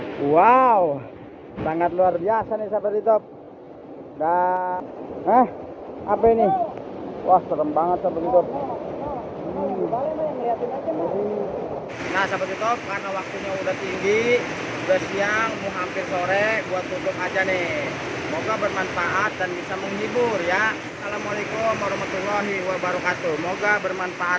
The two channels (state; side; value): identical; both; correlation 1.00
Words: Wow, sangat luar biasa nih, sahabat YouTube. Dan apa ini? Wah, serem banget, sahabat YouTube. Nah, sahabat YouTube, karena waktunya udah tinggi, udah siang, mau hampir sore, buat tutup aja nih. Semoga bermanfaat dan bisa menghibur ya. Assalamualaikum warahmatullahi wabarakatuh. Semoga